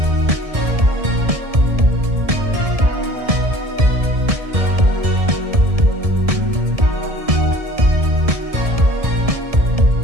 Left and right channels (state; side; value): late; left; 1.7 ms